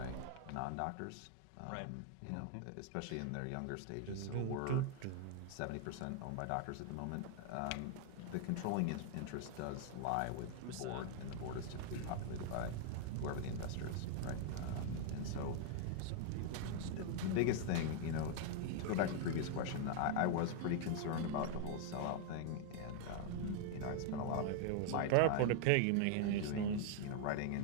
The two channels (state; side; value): different; both; correlation 0.00